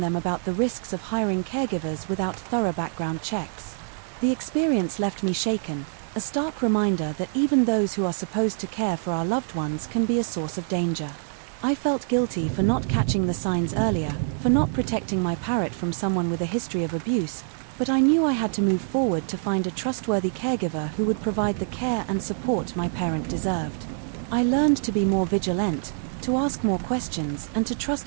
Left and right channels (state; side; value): silent; left; digital silence